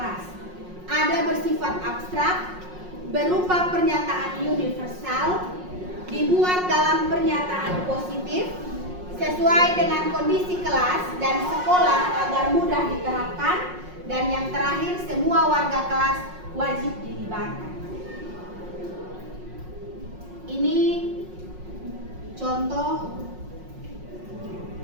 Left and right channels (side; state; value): left; late; 5.5 ms